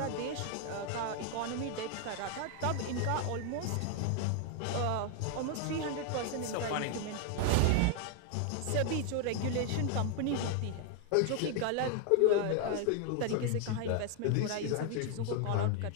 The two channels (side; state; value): both; different; correlation 0.00